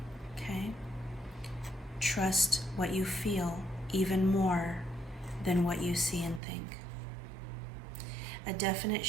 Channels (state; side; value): drops out; left; at 6.4 s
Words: Okay? Trust what you feel even more than what you see and think. A definite